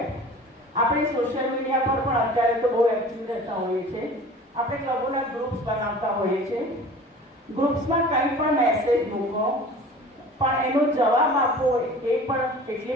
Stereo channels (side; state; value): both; normal; correlation 0.42